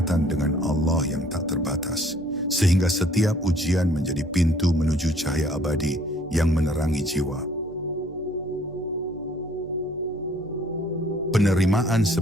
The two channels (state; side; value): noise; right; hum, 20 dB below the sound